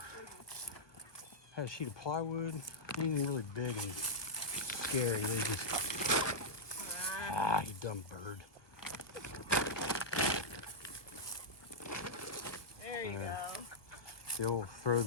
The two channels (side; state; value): right; late; 1.2 ms